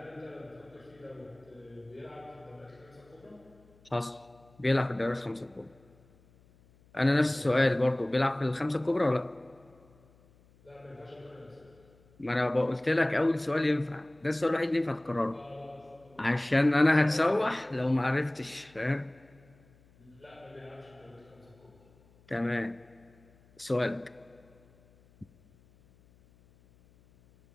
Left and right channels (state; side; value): noise; left; hum, 29 dB below the sound